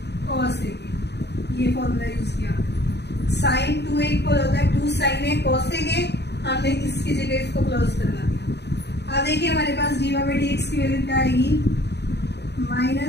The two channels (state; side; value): late; right; 0.49 ms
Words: cos ए, ये formula use किया। Sign 2a equal होता है 2 साइन ए कॉस ए, हमने इसकी जगह इसको क्लोज करवा दिया। अब देखिए हमारे पास d y by d x की वैल्यू क्या आएगी,